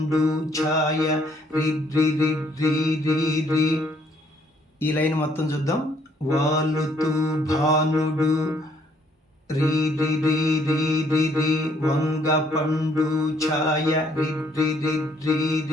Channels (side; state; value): both; normal; correlation 0.66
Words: ఛాయ రి రి రి రి రి రి. ఈ లైన్ మొత్తం చూద్దాం. వాలుతూ భానుడు రి రి రి రి రి రి వంగ పండు ఛాయ రి రి రి రి